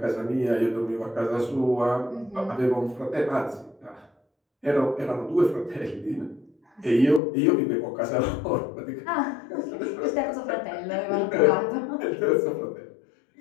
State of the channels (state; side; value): drops out; right; at 7.2 s